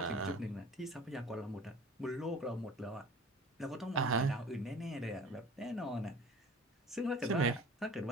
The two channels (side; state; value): both; normal; correlation 0.44